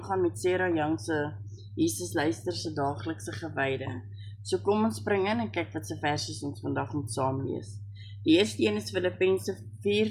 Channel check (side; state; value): both; identical; correlation 1.00